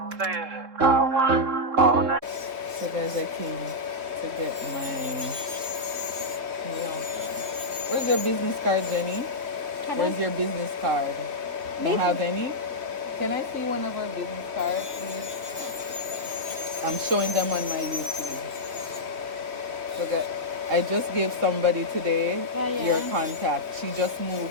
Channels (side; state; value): left; late; 3.5 ms